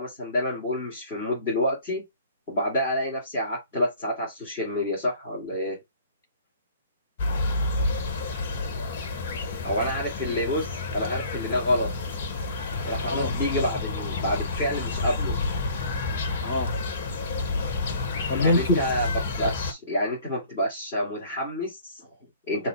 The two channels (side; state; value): both; inverted; correlation -0.53